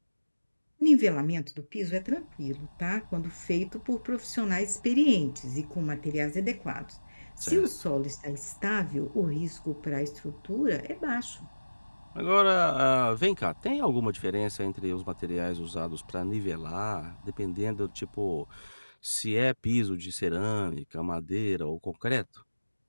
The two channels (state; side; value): inverted; both; correlation -1.00